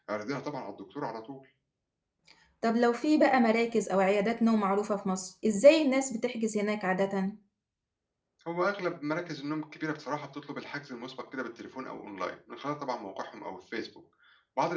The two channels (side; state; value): both; identical; correlation 1.00